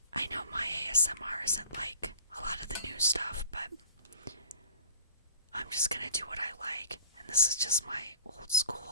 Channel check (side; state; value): both; inverted; correlation -0.44